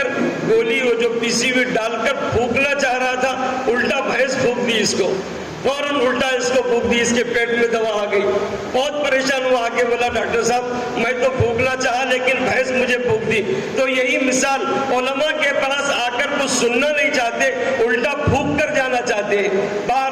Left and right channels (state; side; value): identical; both; correlation 1.00